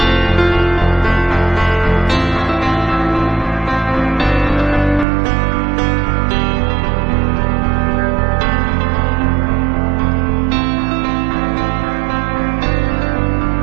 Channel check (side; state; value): left; drops out; at 5.1 s